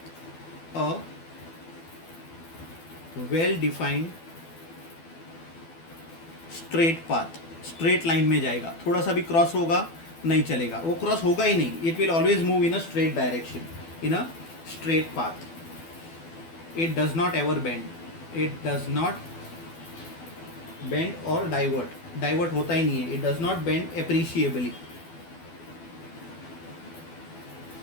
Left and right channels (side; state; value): right; late; 12 ms